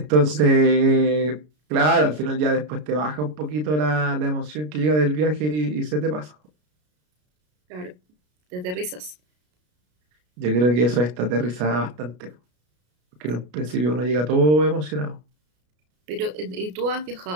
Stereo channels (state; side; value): late; left; 33 ms